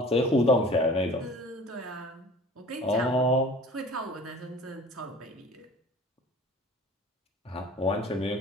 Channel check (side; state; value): both; normal; correlation 0.44